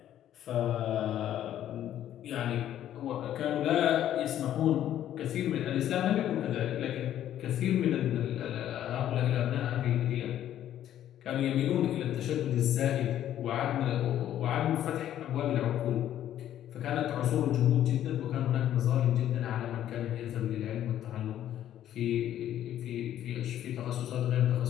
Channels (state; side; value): quieter; right; 11.5 dB